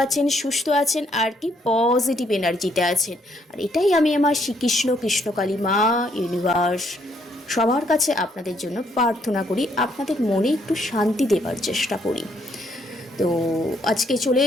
আছেন, সুস্থ আছেন আর কি পজিটিভ এনার্জিতে আছেন। আর এটাই আমি আমার শ্রীকৃষ্ণ কৃষ্ণকালী মা ইউনিভার্স সবার কাছে আপনাদের জন্য প্রার্থনা করি, আপনাদের মনে একটু শান্তি দেবার চেষ্টা করি। তো আজকে চলে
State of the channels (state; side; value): normal; both; correlation 0.70